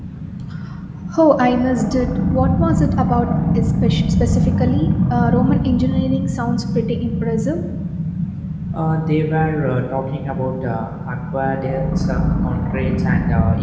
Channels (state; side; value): identical; both; correlation 1.00